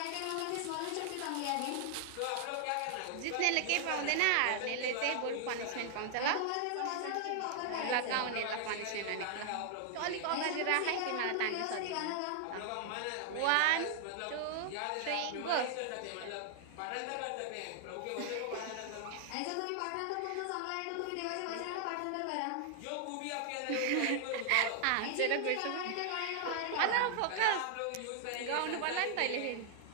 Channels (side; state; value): both; different; correlation -0.01